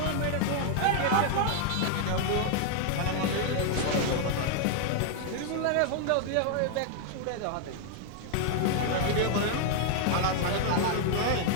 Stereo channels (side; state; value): both; different; correlation 0.00